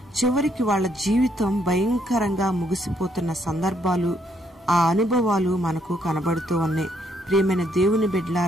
చివరికి వాళ్ళ జీవితం భయంకరంగా ముగిసిపోతున్న సందర్భాలు, ఆ అనుభవాలు మనకు కనబడుతూ ఉన్నాయి. ప్రియమైన దేవుని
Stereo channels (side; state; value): both; normal; correlation 0.71